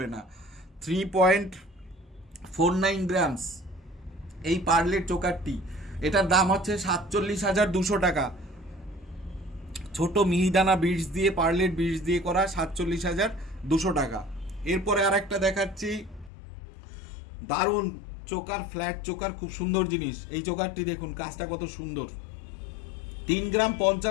না। 3.49 গ্রামস এই পার্লের চোকারটি, এটার দাম হচ্ছে 47,200 টাকা। ছোট মিহিদানা বিটস দিয়ে, পার্লের বিটস দিয়ে করা, 47,200 টাকা। এরপরে আর একটা দেখাচ্ছি, দারুণ চোকার, ফ্ল্যাট চোকার, খুব সুন্দর জিনিস। এই চোকারটি দেখুন কাজটা কত সুন্দর, 3 গ্রাম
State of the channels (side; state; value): right; drops out; at 16.3 s